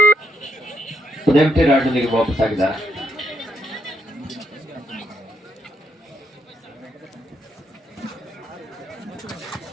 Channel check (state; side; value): normal; both; correlation 0.76